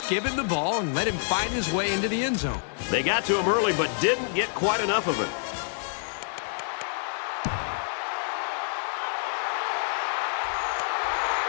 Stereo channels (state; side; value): silent; right; digital silence